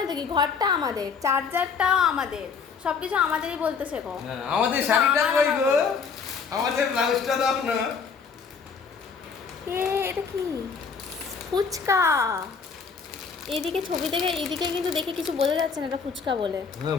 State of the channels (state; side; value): quieter; right; 5.7 dB